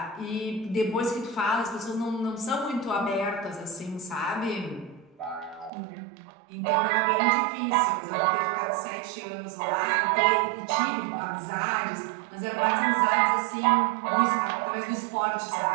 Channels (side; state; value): left; drops out; at 5.7 s